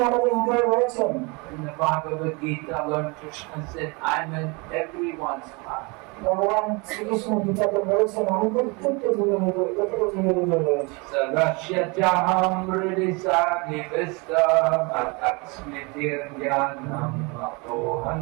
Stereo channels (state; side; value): quieter; left; 28.8 dB